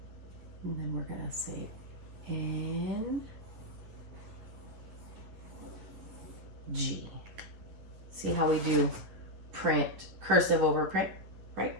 And then we're going to say N, G. See how we do print, cursive over print, right?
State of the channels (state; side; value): late; left; 11 ms